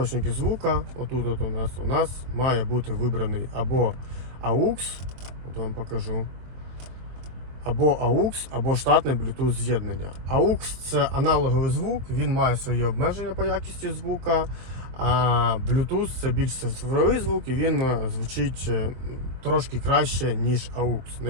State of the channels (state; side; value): late; left; 24 ms